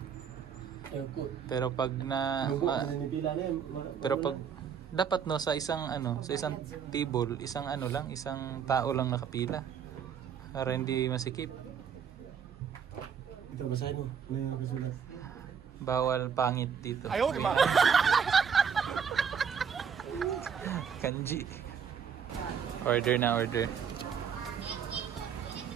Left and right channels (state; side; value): quieter; left; 7.3 dB